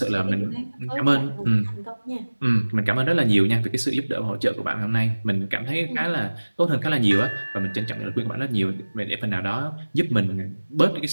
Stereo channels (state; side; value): inverted; both; correlation -1.00